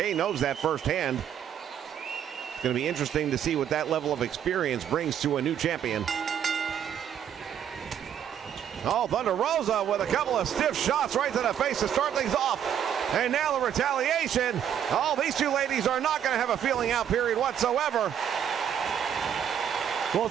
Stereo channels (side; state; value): left; quieter; 9.2 dB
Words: knows that firsthand. It's going to be interesting to see what that level of experience brings to a new champion. Oh, Thunder Rosa with a couple of stiff shots right to the face to start things off. And now the retaliation. Oh, these two ladies are not going to have a feeling out period whatsoever. Well,